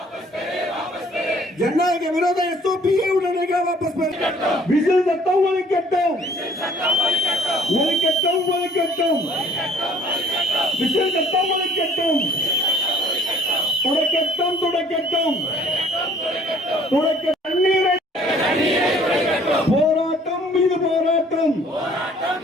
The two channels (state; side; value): normal; both; correlation 0.56